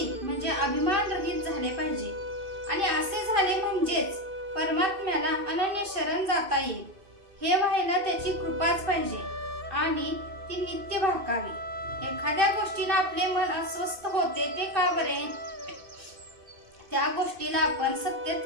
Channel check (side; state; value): left; late; 2.6 ms